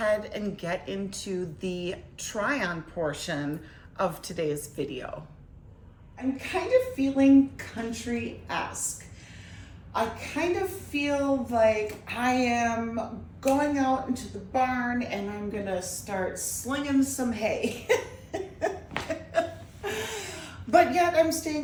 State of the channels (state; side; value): identical; both; correlation 1.00